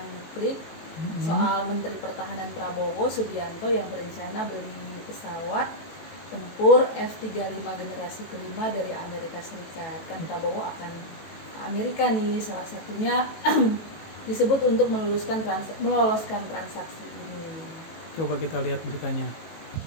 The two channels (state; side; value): late; right; 18 ms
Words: klik soal Menteri Pertahanan Prabowo Subianto yang berencana beli pesawat tempur F-35 generasi kelima dari Amerika Serikat. Kan Prabowo akan ke Amerika nih, salah satunya disebut untuk meloloskan transaksi ini. Coba kita lihat beritanya.